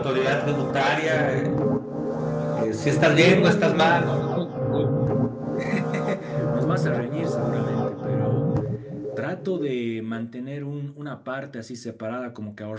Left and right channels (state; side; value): identical; both; correlation 1.00